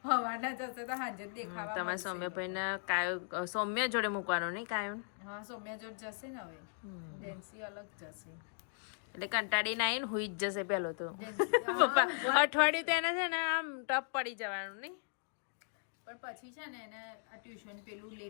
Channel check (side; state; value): right; silent; digital silence